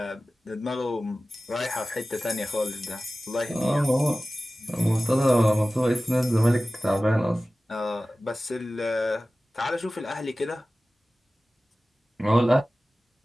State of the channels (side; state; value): both; normal; correlation 0.96